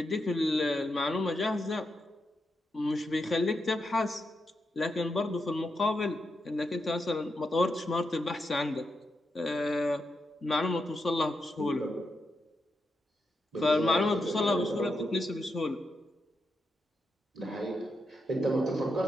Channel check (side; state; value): both; normal; correlation 0.85